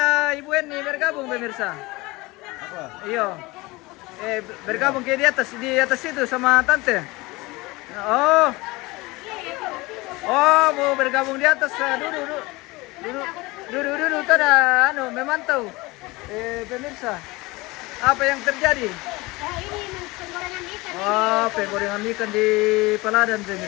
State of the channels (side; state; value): right; quieter; 22.5 dB